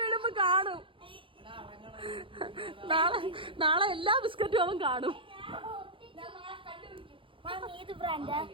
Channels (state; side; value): late; left; 0.25 ms